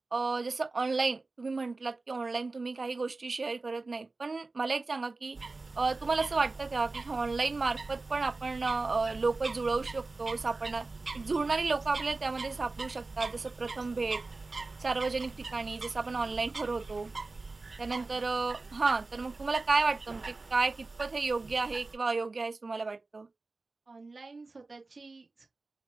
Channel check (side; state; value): left; quieter; 3.6 dB